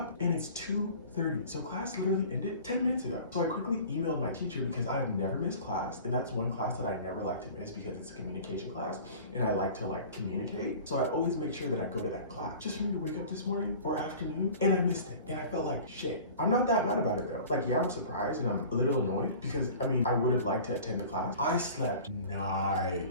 and it's 2:30. So class literally ended 10 minutes ago. So I quickly emailed my teacher because I've never missed class, and that's one class that I never like to miss because it's a communication class and I like to communicate. So I always make sure that I go to that class. Just for me to wake up this morning or afternoon and I missed it and I felt like shit. I'm not that mad about it though. Like, yeah, I'm surprised and I'm a little annoyed because I mean, I would have liked to attend the class. I slept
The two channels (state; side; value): inverted; both; correlation -0.42